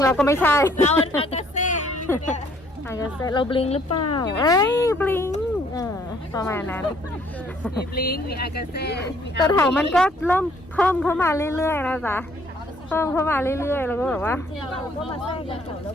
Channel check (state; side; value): normal; both; correlation 0.63